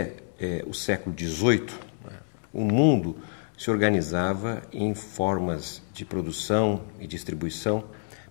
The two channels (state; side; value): silent; right; digital silence